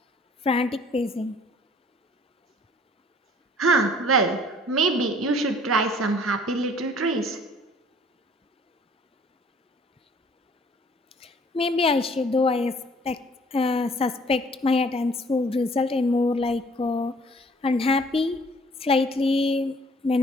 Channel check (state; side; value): normal; both; correlation 0.56